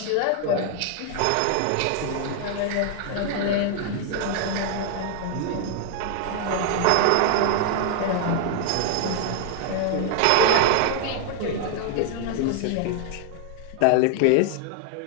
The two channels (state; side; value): different; both; correlation 0.00